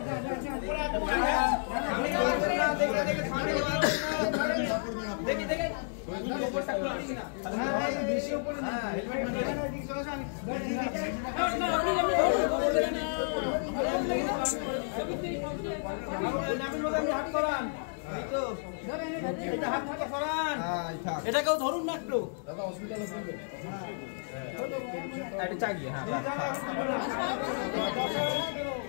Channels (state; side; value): silent; right; digital silence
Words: এটাকেও ধরুন না একটু দাদা, হসপিটালে চাগিয়ে। হ্যাঁ